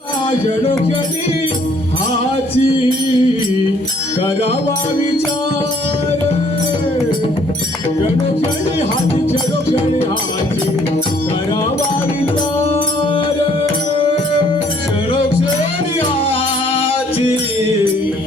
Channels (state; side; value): normal; both; correlation 0.62